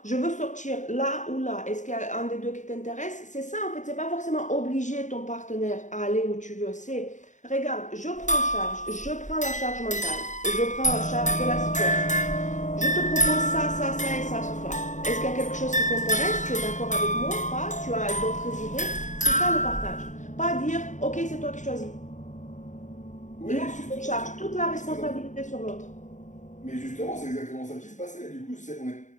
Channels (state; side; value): late; right; 0.36 ms